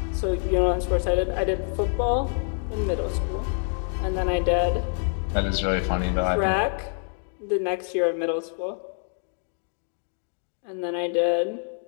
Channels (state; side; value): silent; right; 57 dB below the other